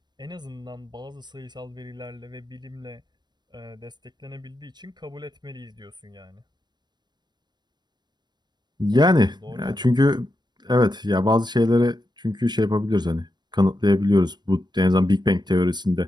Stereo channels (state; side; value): late; left; 0.21 ms